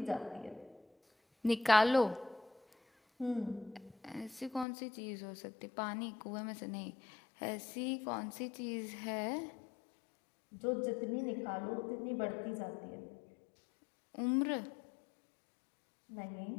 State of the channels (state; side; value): drops out; right; at 4.7 s